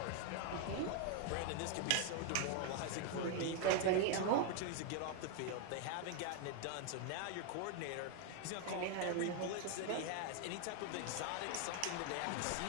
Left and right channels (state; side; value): different; both; correlation 0.01